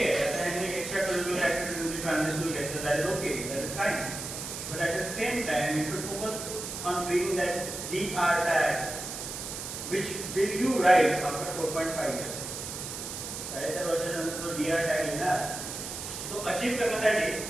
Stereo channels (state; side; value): noise; right; hiss, 7 dB below the sound